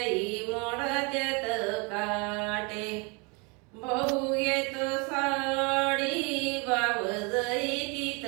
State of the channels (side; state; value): left; quieter; 31.3 dB